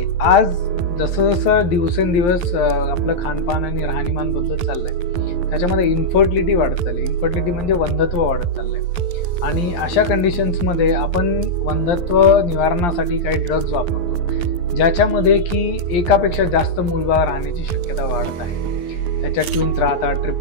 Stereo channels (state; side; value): late; right; 12 ms